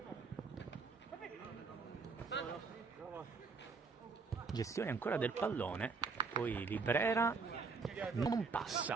Gestione ancora del pallone, poi Librera non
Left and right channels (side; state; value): left; quieter; 4.7 dB